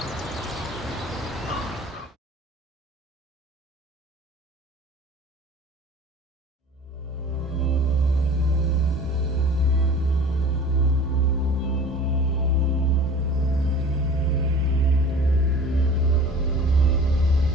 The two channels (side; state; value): both; normal; correlation 0.43